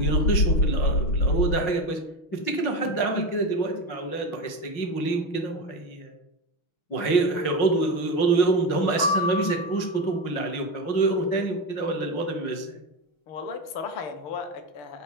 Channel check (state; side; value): late; right; 6.1 ms